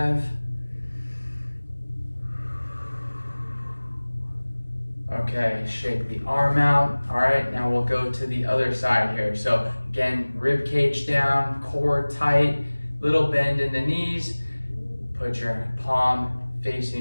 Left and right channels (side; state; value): both; inverted; correlation -1.00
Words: Okay, shake the arm out. All right, now we'll go to the other side here. So again, rib cage down, core tight, little bend in the knees. Put your palm